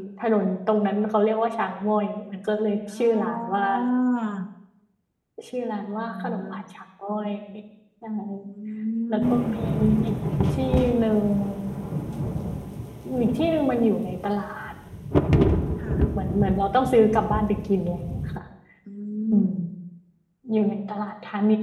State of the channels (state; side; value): identical; both; correlation 1.00